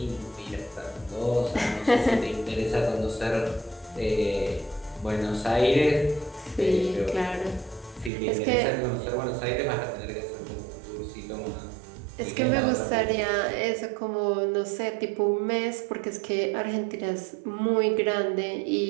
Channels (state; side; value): drops out; left; at 8.1 s